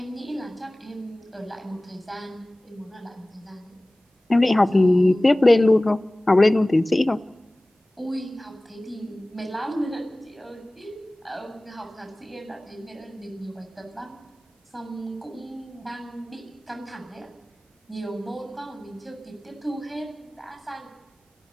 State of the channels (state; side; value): normal; both; correlation 0.98